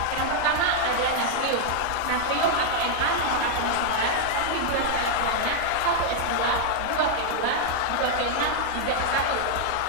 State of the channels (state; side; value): different; both; correlation -0.01